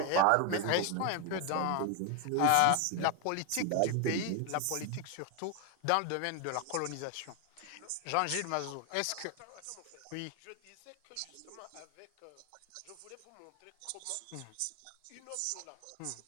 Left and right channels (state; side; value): different; both; correlation 0.01